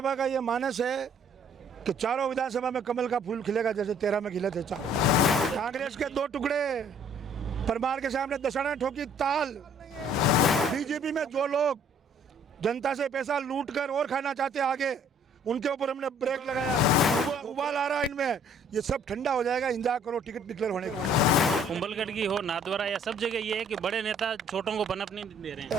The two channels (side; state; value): both; normal; correlation 0.59